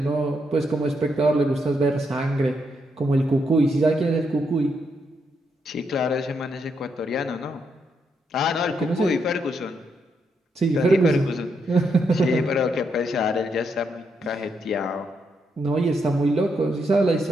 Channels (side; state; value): both; normal; correlation 0.79